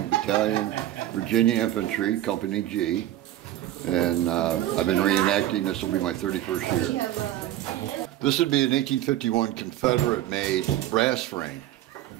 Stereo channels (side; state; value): left; quieter; 13.5 dB